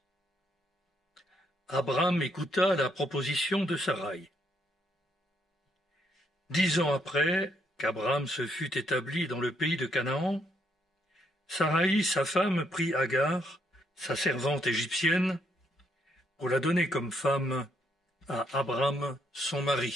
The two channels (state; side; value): normal; both; correlation 0.74